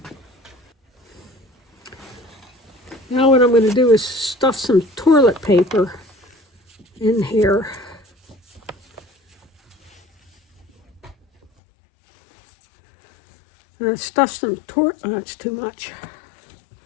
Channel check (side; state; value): right; drops out; at 11.5 s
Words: Now what I'm going to do is stuff some toilet paper in here. Stuff some that's too much.